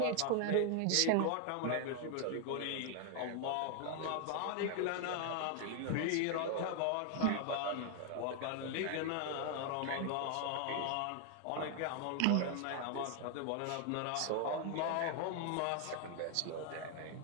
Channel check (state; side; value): different; both; correlation 0.00